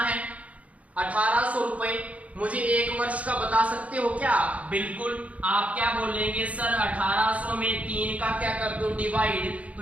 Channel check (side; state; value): left; late; 0.067 ms